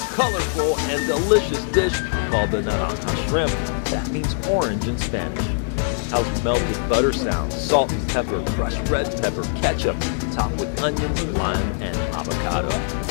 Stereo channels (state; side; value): silent; right; digital silence